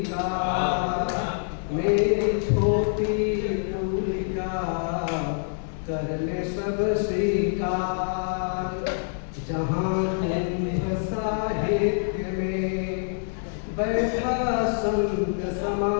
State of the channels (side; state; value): right; silent; digital silence